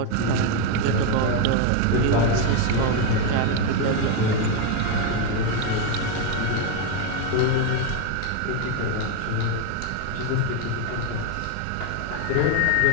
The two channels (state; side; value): different; both; correlation 0.02